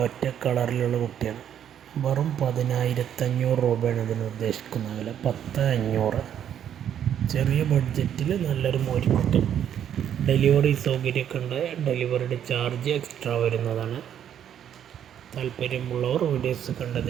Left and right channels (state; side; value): quieter; left; 9.6 dB